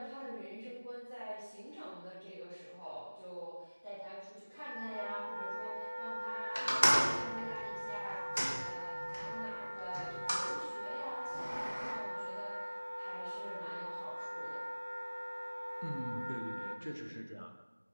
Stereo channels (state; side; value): inverted; both; correlation -1.00